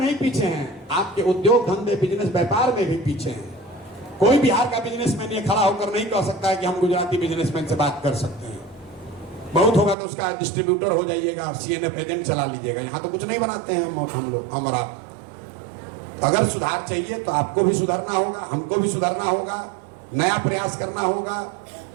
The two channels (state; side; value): drops out; left; at 10.0 s